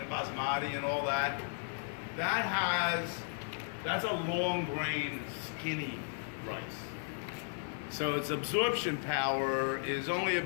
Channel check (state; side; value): silent; right; 54 dB below the other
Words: basmati and all that. That's a long grain, skinny rice. So its absorption power is only